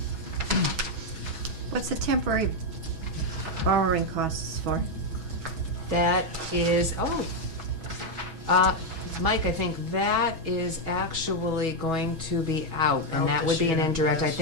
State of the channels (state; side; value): late; left; 6.2 ms